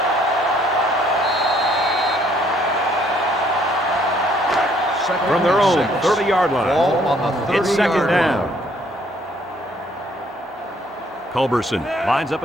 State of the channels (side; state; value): both; normal; correlation 0.64